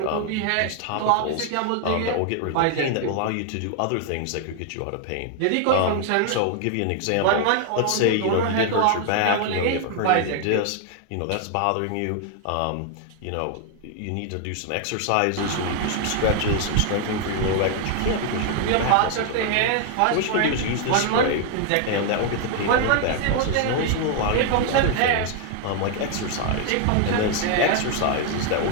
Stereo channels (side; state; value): both; different; correlation 0.00